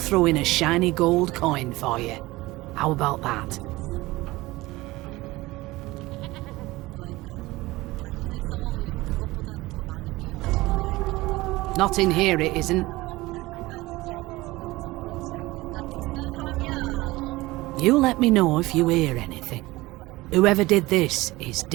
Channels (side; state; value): left; quieter; 19.8 dB